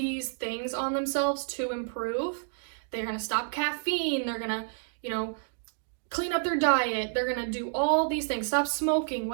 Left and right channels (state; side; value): silent; left; digital silence